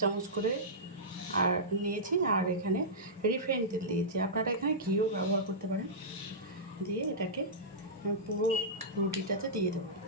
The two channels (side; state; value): both; normal; correlation -0.15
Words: চামচ করে আর নিয়েছি, আর এখানে রিফাইন তেল দিয়েছি। আপনারা এখানে ঘিও ব্যবহার করতে পারেন। দিয়ে এটাকে পুরো রুটিটাতে দিয়ে দেবো।